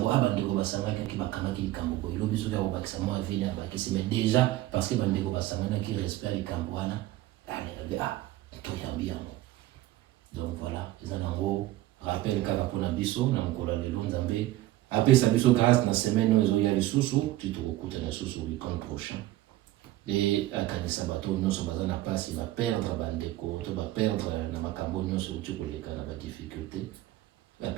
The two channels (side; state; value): left; quieter; 16.0 dB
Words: bandeko basanganaki bakangaki likambo boye lobi soki akobakisa mwa vile abakisi, mais déjà parce que bandeko basanganaki respect ya likambo wana toyambi yango. Donc voilà, eza nango rappel kaka mpona biso na mokolo ya lelo. Nzambe apesa biso grâce na semaine oyo ezoya lisusu ti tokokutana lisusu weekend prochain e akanisa bato nyonso baza na pasi baperdre bandeko to baperdre na makambo nyonso uti koleka na badifficulté,